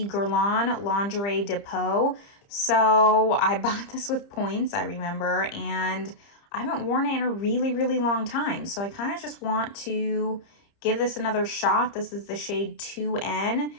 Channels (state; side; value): late; right; 30 ms